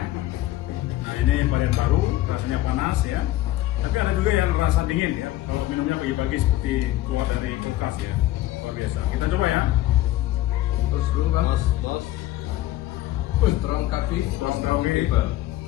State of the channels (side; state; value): right; quieter; 15.0 dB